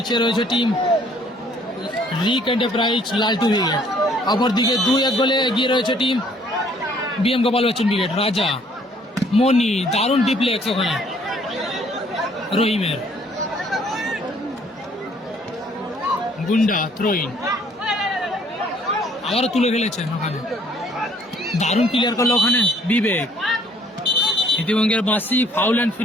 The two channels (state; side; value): normal; both; correlation 0.60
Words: রয়েছে টিম রিক এন্টারপ্রাইজ লালটু ব্রিগেড। অপরদিকে 2-1 গোলে এগিয়ে রয়েছে team BM Gopal Bachchan brigade. রাজা, মনি, দারুণ ডিপ্লেক্স ওখানে রহিমের। গুন্ডা থ্রোইন, আবারও তুলে ফেলেছেন ওখানে, দারুণ ক্লিয়ার করলো ওখানে বিবেক। ইতিবঙ্গের বাঁশি, ফাউল অ্যান্ড